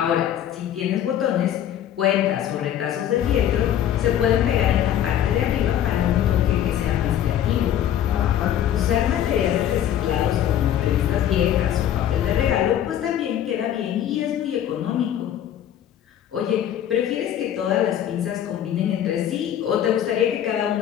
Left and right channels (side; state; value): right; quieter; 10.7 dB